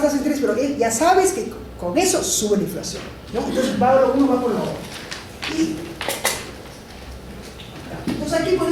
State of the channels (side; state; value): both; identical; correlation 1.00